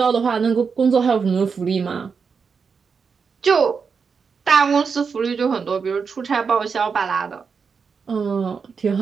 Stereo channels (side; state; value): left; quieter; 5.7 dB